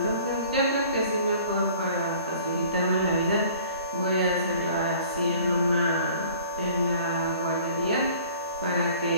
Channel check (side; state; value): both; inverted; correlation -0.51